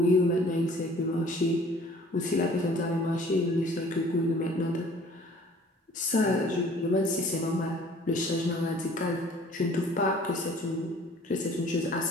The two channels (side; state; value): both; normal; correlation 0.52